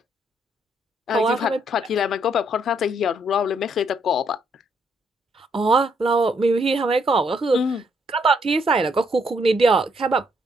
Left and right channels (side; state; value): both; normal; correlation 0.72